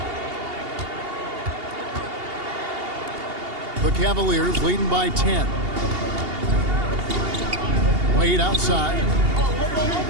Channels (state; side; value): late; left; 2.8 ms